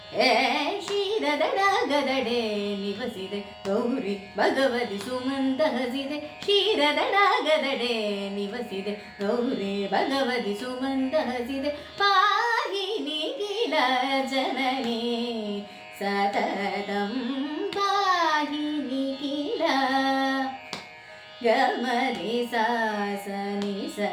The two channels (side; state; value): both; identical; correlation 1.00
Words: ಕ್ಷೀರದಡಗದಡೆ ನಿವಸಿದೆ ಗೌರಿ ಭಗವತಿ ಸುಮಂತ ಹಸಿದೆ ಕ್ಷೀರದಡಗದಡೆ ನಿವಸಿದೆ ಗೌರಿ ಭಗವತಿ ಸುಮಂತ ಹಸಿದೆ ಪಾಹಿ ನಿಖಿಲ ಜನನೇ ಸತತಂ ಪಾಹಿ ನಿಖಿಲ ಗಮರಿ ಸಾಸ ನಿ